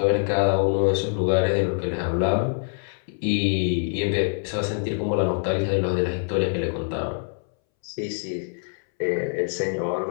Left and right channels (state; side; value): silent; right; 62 dB below the other